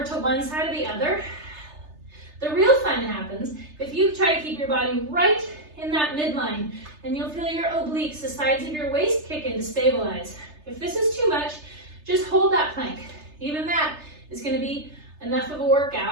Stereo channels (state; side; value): late; left; 3.3 ms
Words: to one side or the other. The real fun happens if you try to keep your body right in that midline, and you'll feel your obliques, the sides of your waist, kick in to stabilize. If this is too much, just hold that plank. Even that is going to be enough of a